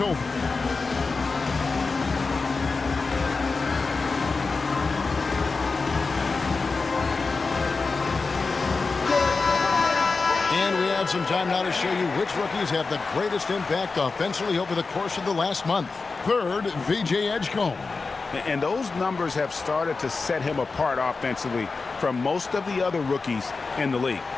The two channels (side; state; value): right; quieter; 4.2 dB